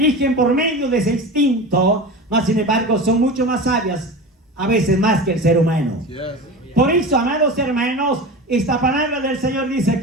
por medio de ese instinto, más sin embargo, son mucho más sabias, a veces más que el ser humano. Por eso, amados hermanos, esta palabra del Señor dice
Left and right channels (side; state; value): both; normal; correlation 0.30